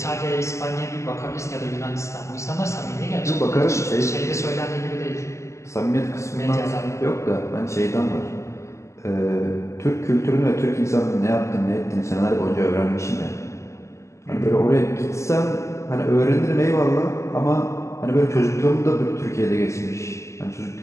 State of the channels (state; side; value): late; right; 0.14 ms